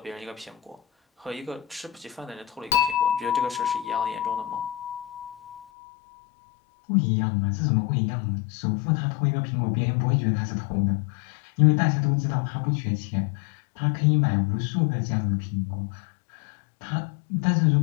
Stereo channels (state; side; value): drops out; right; at 5.7 s